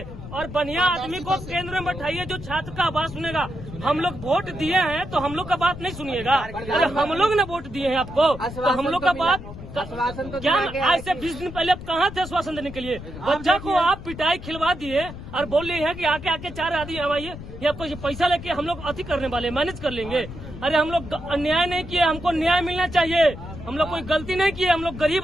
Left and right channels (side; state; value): left; noise; rumble, 12 dB below the sound